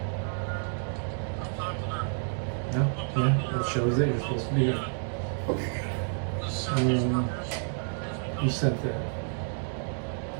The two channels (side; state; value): left; silent; 58 dB below the other